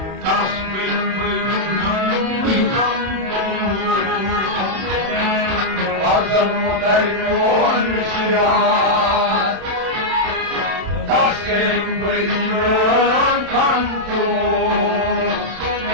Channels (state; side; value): late; left; 31 ms